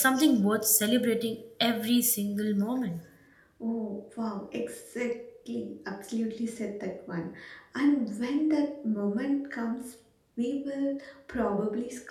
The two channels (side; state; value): both; identical; correlation 1.00